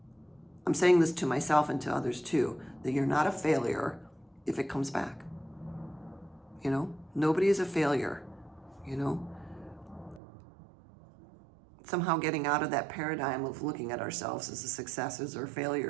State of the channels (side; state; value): left; drops out; at 10.2 s